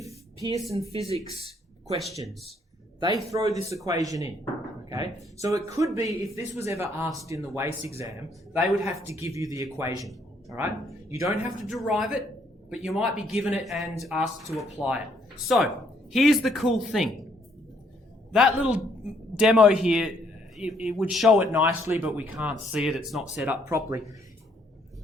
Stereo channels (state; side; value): normal; both; correlation 0.68